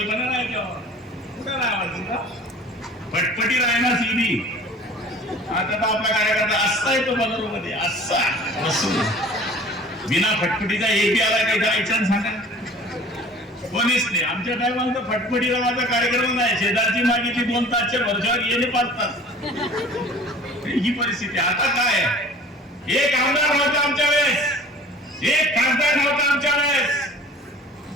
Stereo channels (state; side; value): normal; both; correlation 0.46